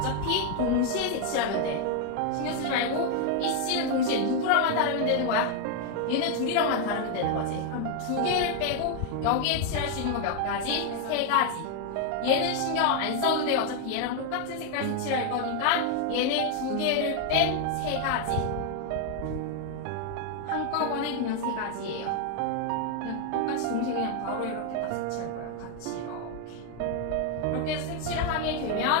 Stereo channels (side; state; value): both; different; correlation 0.01